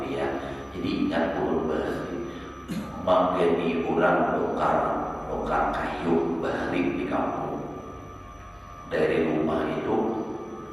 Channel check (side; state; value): both; identical; correlation 1.00